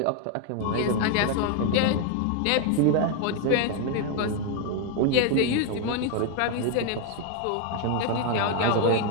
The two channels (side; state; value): both; different; correlation 0.01